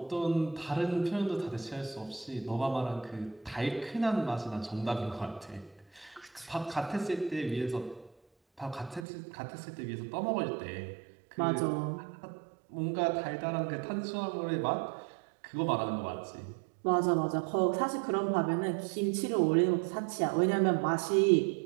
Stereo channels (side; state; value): left; drops out; at 9.1 s